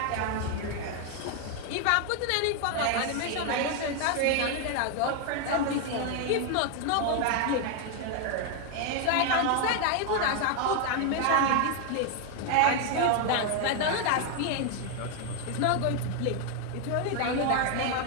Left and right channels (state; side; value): different; both; correlation 0.01